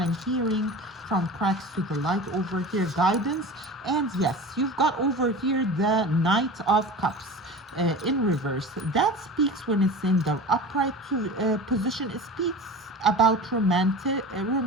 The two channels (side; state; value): both; normal; correlation 0.34